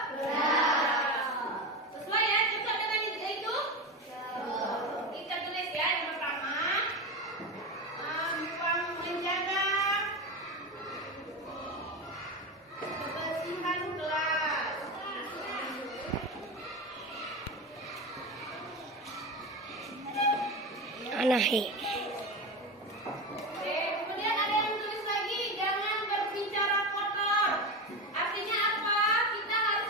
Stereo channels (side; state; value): both; normal; correlation 0.21